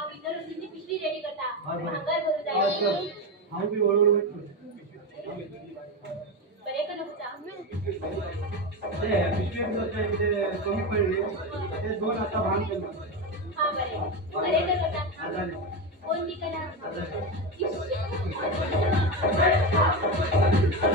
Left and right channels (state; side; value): normal; both; correlation 0.16